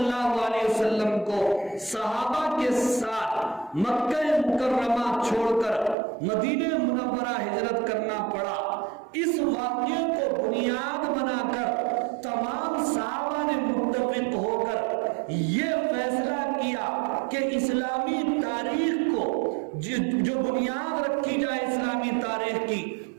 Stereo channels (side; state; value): left; drops out; at 6.0 s